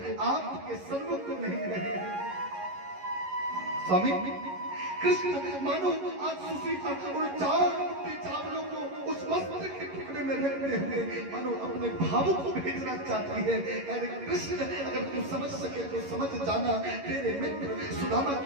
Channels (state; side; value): late; left; 11 ms